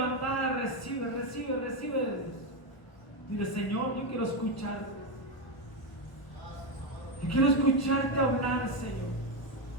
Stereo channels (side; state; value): right; late; 1.1 ms